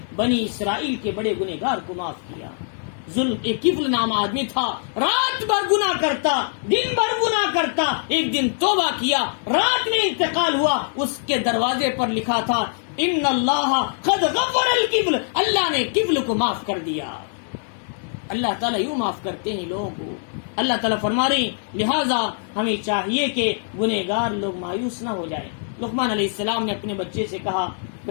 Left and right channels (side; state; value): right; silent; digital silence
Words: بنی اسرائیل کے بڑے گنہگار کو معاف کیا. ایک کفل نام آدمی تھا, رات بھر گناہ کرتا, دن بھر گناہ کرتا, ایک دن توبہ کیا, رات میں انتقال ہوا. اس کے دروازے پر لکھا تھا ان اللہ قد غفر الکفل, اللہ نے کفل کو معاف کر دیا. اللہ تعالیٰ یوں معاف کرتے ہیں لوگوں کو. اللہ تعالیٰ فرما رہے ہیں لہذا ہمیں چاہیے کہ گنہگار لوگ مایوس نہ ہو جائیں. لقمان علیہ السلام نے اپنے بچے سے کہا